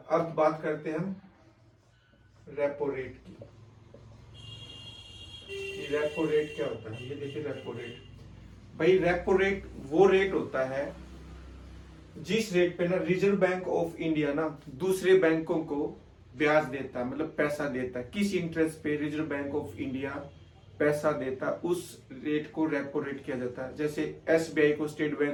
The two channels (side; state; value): both; identical; correlation 1.00